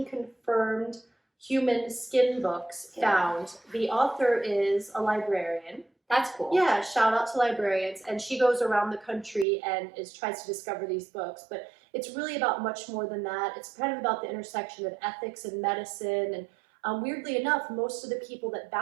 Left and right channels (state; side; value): drops out; left; at 9.5 s